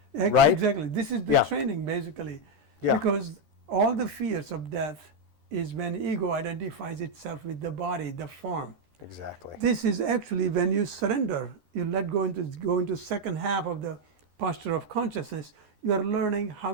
Right? Exactly. This is the Yeah. training basically. Yeah. Because all the fears of death is when ego identifies itself with the body, the form. Exactly. This is actually when you surrender, you go into second half of the posture of consciousness, you are learning how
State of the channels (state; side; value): late; left; 13 ms